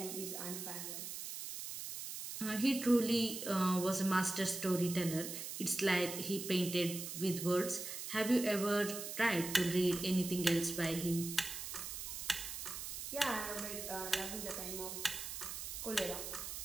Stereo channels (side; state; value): right; noise; hiss, 7 dB below the sound